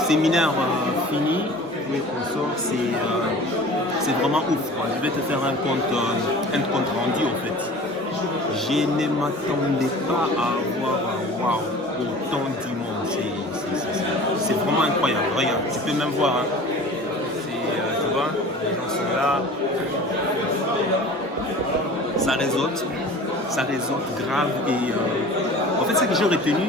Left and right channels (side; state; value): both; normal; correlation 0.42